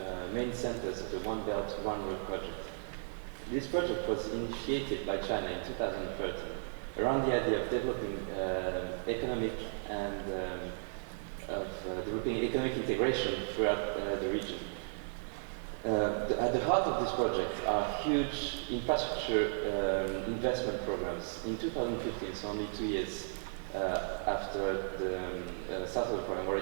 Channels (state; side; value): silent; left; 54 dB below the other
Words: main centers of the One Belt, One Road project. This project was initiated by China in 2013 around the idea of developing economic and developing economic integration throughout the region. At the heart of this project are huge infrastructure investment programs. In 2015, so only 2 years after the start of the program,